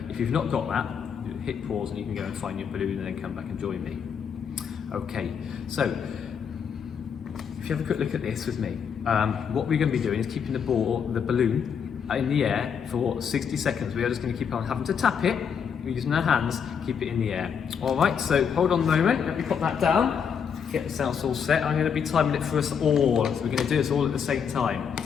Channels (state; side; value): quieter; right; 7.2 dB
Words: if you've not got that, hit pause and you can go and find your balloon and then come back and join me. Okay, so if you have a quick look at this with me, what we're going to be doing is keeping the balloon in the air for 60 seconds. We are just going to keep on having to tap it. We're using our hands, keep it in the air. All right, so hold on a moment, let me put that down. Get ourselves all set. I'm going to be timing it for us all. So we're going to do this all at the same time.